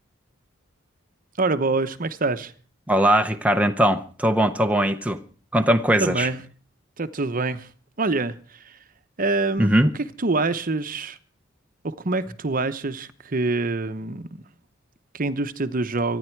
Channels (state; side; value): normal; both; correlation 0.57